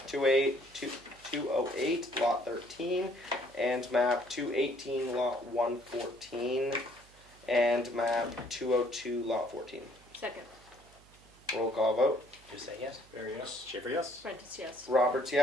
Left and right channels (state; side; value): noise; right; hum, 26 dB below the sound